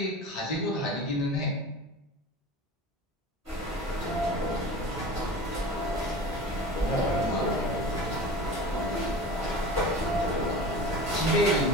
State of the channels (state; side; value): normal; both; correlation 0.35